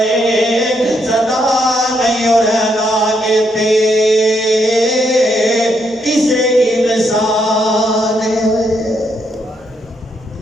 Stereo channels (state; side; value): normal; both; correlation 0.76